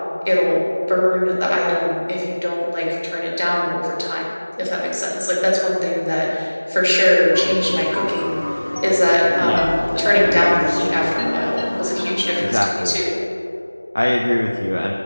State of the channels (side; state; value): both; inverted; correlation -1.00